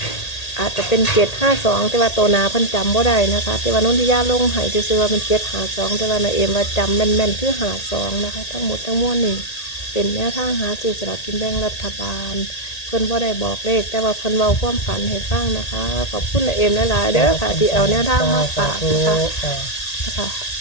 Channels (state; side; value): late; right; 1.8 ms